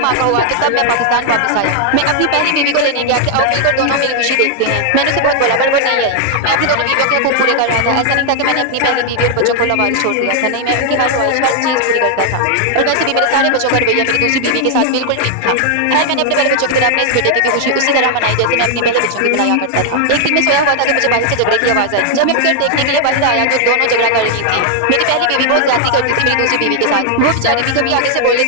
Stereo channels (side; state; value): both; different; correlation 0.00